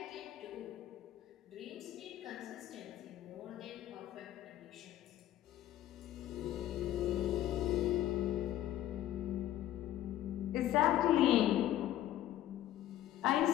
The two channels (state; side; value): quieter; right; 12.9 dB